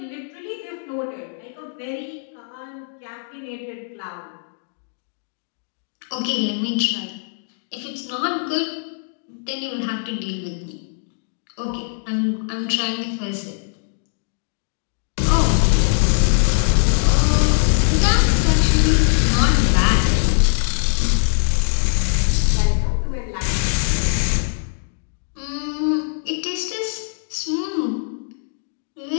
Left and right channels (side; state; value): right; silent; digital silence